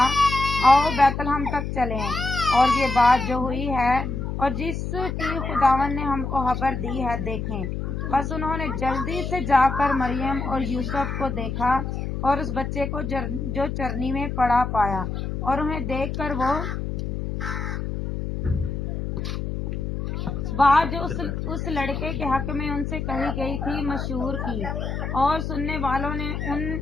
آؤ بیت لحم تک چلیں اور یہ بات جو ہوئی ہے اور جس کی خداوند نے ہم کو خبر دی ہے دیکھیں۔ بس انہوں نے جلدی سے جا کر مریم اور یوسف کو دیکھا اور اس بچے کو جو چرنی میں پڑا پایا، اور انہیں دیکھ کر وہ بات جو اس لڑکے کے حق میں ان سے کہی گئی تھی مشہور کی، اور سننے والوں نے ان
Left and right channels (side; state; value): left; noise; hum, 4 dB below the sound